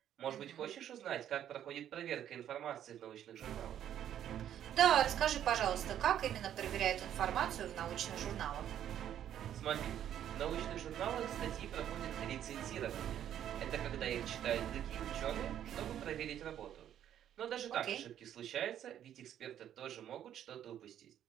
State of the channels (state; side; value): quieter; left; 10.5 dB